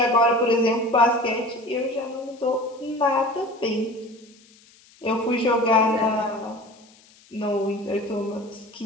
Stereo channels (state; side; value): noise; left; hiss, 28 dB below the sound